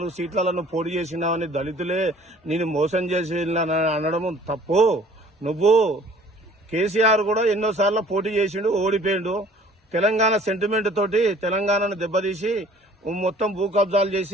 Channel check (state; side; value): normal; both; correlation 0.53